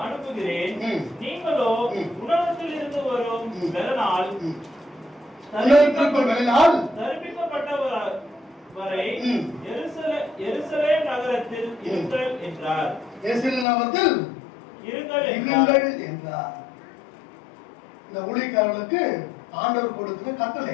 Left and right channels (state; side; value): drops out; right; at 13.7 s